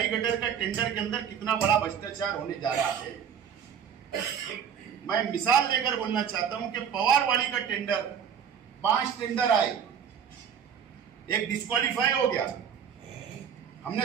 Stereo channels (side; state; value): left; quieter; 7.8 dB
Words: गटर का टेंडर के अंदर कितना बड़ा भ्रष्टाचार होने जा रहा है। मैं मिसाल लेकर बोलना चाहता हूं कि पवारवाड़ी का टेंडर 5 टेंडर आए, एक डिस्क्वालीफाई हो गया,